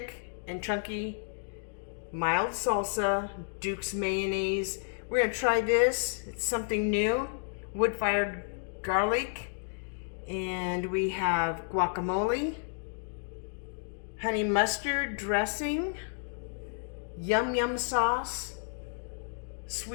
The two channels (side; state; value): right; silent; digital silence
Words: and chunky mild salsa, Duke's mayonnaise. We're gonna try this. It's something new. Wood-fired garlic, and we have guacamole, honey mustard dressing, yum sauce,